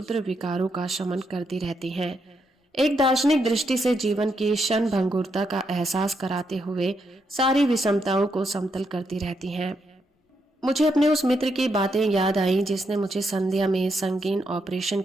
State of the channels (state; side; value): normal; both; correlation 0.80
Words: विकारों का शमन करती रहती है। एक दार्शनिक दृष्टि से जीवन की क्षण भंगुरता का एहसास कराते हुए सारी विषमताओं को समतल करती रहती हैं। मुझे अपने उस मित्र की बातें याद आई जिसने मुझे संध्या में संगीन ऑपरेशन